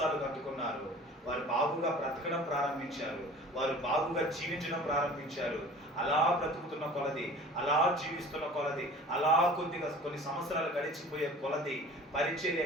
కట్టుకున్నారు, వారు బాగుగా బ్రతకడం ప్రారంభించారు, వారు బాగుగా జీవించడం ప్రారంభించారు. అలా బ్రతుకుతున్న కొలది, అలా జీవిస్తున్న కొలది, అలా కొన్ని సంవత్సరాలు గడిచిపోయే కొలది పరిచర్య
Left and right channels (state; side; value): normal; both; correlation 0.44